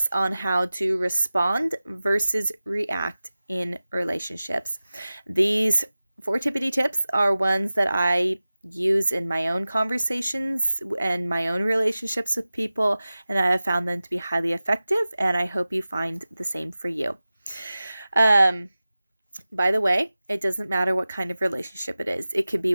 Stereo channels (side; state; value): both; inverted; correlation -0.96